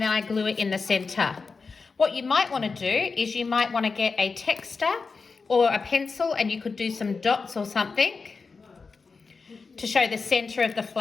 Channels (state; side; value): quieter; right; 4.6 dB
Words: I glue it in the centre. What you might want to do is you might want to get a texter or a pencil, and you could do some dots or something to show the centre of the